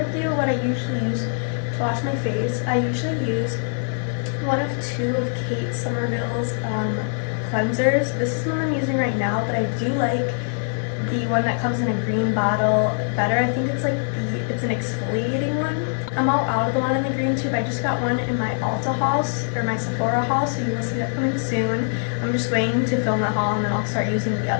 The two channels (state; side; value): silent; right; digital silence